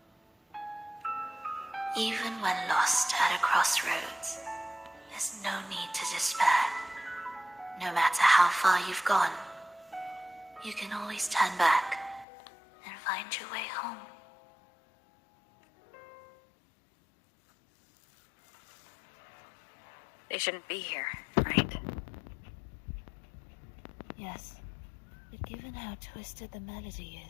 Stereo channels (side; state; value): right; drops out; at 12.2 s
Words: Even when lost at a crossroads, there's no need to despair. No matter how far you've gone, you can always turn back and find your way home. They shouldn't be here, right? Yes, but given how twisted the melody